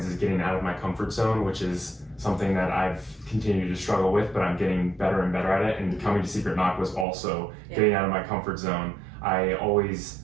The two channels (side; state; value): left; drops out; at 7.1 s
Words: is getting out of my comfort zone, which is something that I've continued to struggle with, but I'm getting better and better at it. And coming to Secret Knock was also getting out of my comfort zone. I always